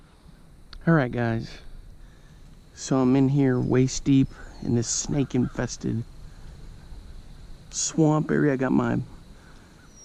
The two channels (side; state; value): both; identical; correlation 1.00